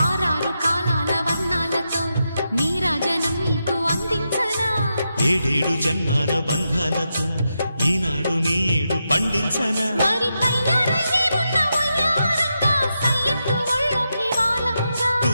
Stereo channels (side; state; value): both; inverted; correlation -0.86